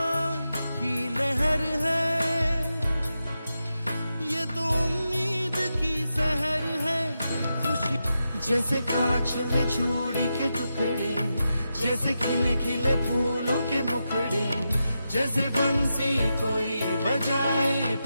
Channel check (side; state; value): both; inverted; correlation -0.88